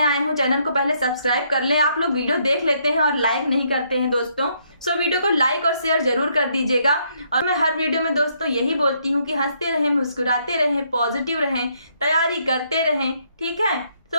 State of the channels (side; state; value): both; inverted; correlation -0.71